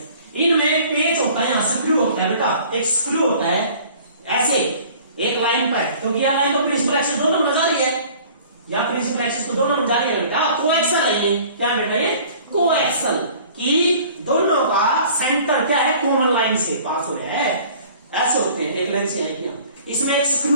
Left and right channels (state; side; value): inverted; both; correlation -0.49